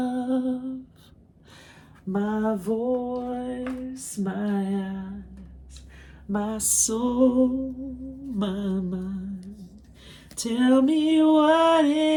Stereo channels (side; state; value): both; identical; correlation 1.00